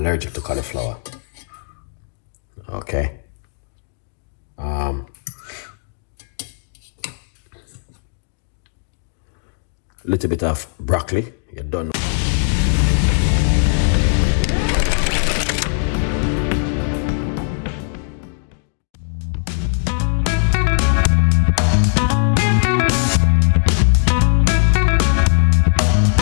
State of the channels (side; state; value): right; silent; digital silence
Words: to cauliflower. Okay. Little bit of broccoli. You're done.